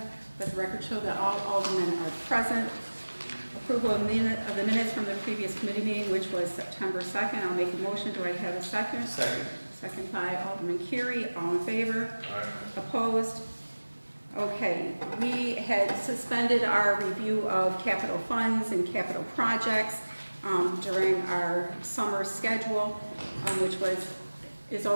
Let the record show that all aldermen are present. Approval of the minutes from the previous committee meeting, which was September 2nd. I'll make a motion. Do I have a second? Second. Second by Alderman Curie. All in favor? Aye. Opposed? Okay, we had suspended our review of capital funds and capital projects during our summer schedule, which is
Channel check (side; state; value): both; inverted; correlation -1.00